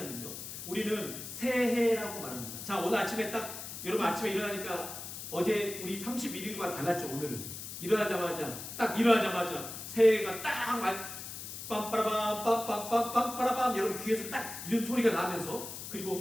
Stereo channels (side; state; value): left; noise; hiss, 9 dB below the sound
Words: 우리는 새해라고 말합니다. 자, 오늘 아침에 딱 여러분 아침에 일어나니까 어제 우리 31일과 달랐죠. 오늘은 일어나자마자 새해가 딱 빰빠라밤 빰빰빰빰빠라밤 여러분 귀에서 딱 이런 소리가 나면서